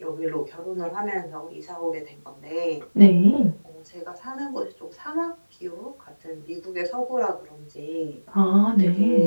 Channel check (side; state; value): both; inverted; correlation -1.00